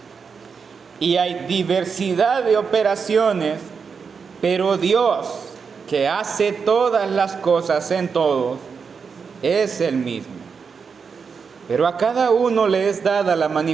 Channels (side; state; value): left; quieter; 5.8 dB